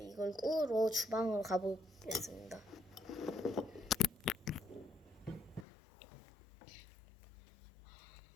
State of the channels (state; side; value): drops out; right; at 5.7 s